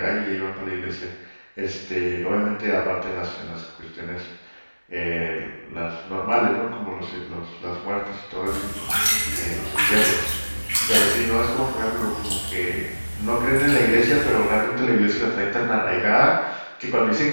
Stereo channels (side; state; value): both; inverted; correlation -1.00